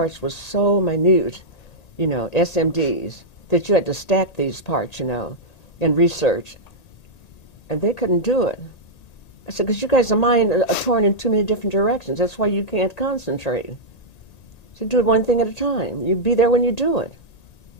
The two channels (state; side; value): late; right; 1.8 ms